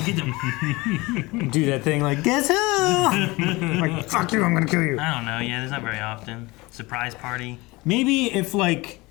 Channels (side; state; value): right; quieter; 22.6 dB